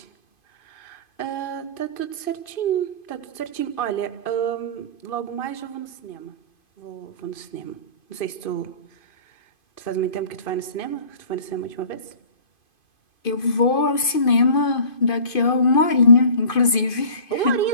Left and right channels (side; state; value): right; late; 2.5 ms